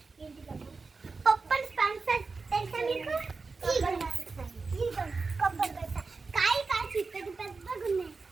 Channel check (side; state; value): left; quieter; 4.2 dB